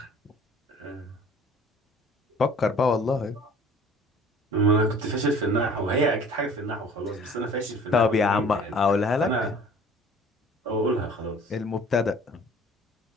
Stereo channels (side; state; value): both; normal; correlation 0.49